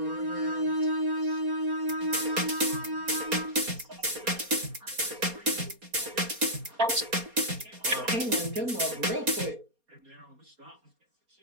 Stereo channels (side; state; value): left; late; 4.2 ms